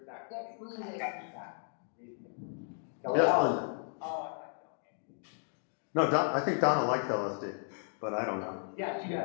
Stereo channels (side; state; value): right; silent; 55 dB below the other